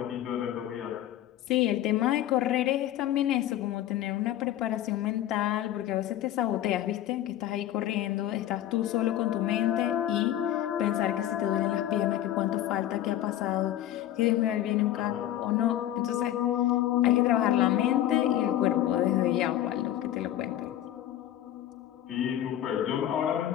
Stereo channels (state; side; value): quieter; right; 12.5 dB